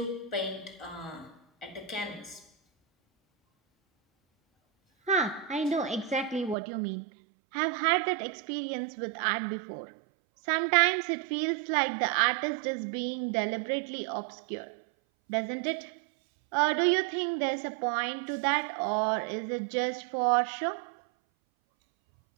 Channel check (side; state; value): left; drops out; at 6.6 s